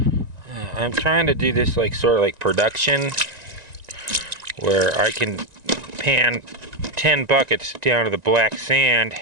I'm trying to do this like sort of like production, where I can pan 10 buckets down to the black sand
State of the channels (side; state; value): left; late; 1.9 ms